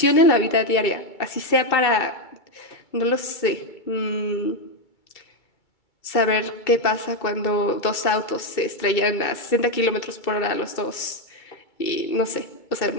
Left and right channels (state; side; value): late; right; 2.3 ms